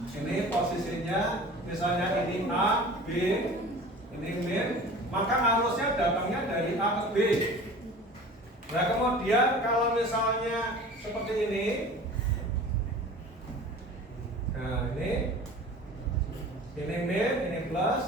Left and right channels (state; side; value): normal; both; correlation 0.41